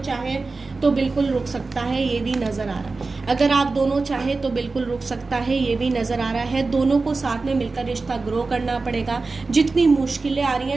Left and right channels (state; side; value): quieter; left; 3.8 dB